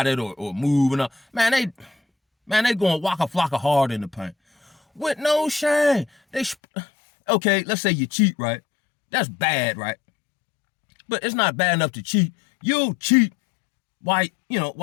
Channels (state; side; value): drops out; right; at 6.6 s